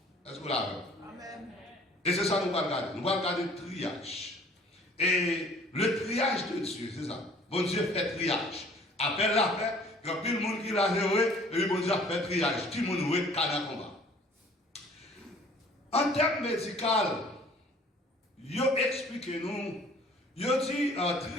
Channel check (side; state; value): both; normal; correlation 0.53